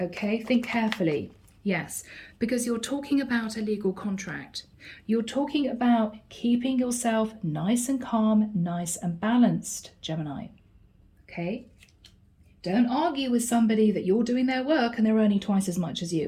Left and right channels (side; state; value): both; identical; correlation 1.00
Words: Okay? Think carefully. Yes, because you're talking about a legal contract. You're talking about keeping yourself nice and calm, nice and balanced, Gemini. Okay? Don't argue with somebody that you're doing their work and they're earning twice as much as